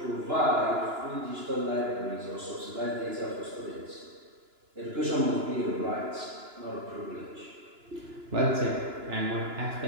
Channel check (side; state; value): left; late; 2.9 ms